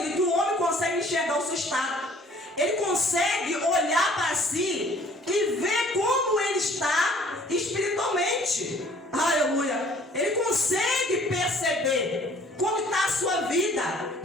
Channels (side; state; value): both; normal; correlation 0.55